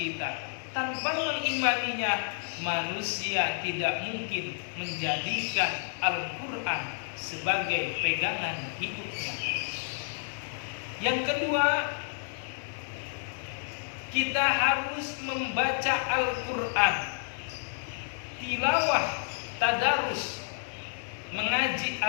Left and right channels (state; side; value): silent; right; 58 dB below the other